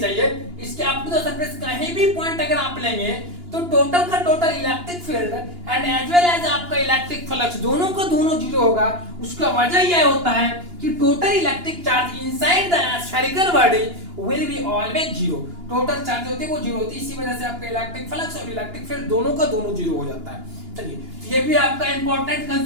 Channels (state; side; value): late; left; 2.9 ms